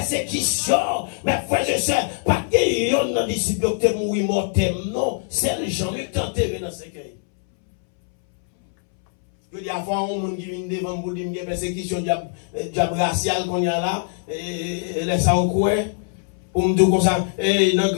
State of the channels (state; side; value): silent; right; 63 dB below the other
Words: mais frère, je sais, pas que yon nan disciple qui mouri mortem, non. C'est les gens qui t'ont enterré dans ce cas. Je dis avant, on qui vient devant pour dire qu'il y a persécution raciale qu'on y a là, et laisse ça au coin. Pour me dire comme ça, et dans